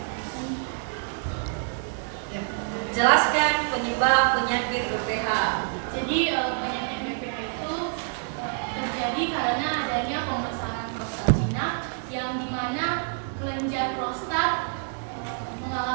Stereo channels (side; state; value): left; silent; 60 dB below the other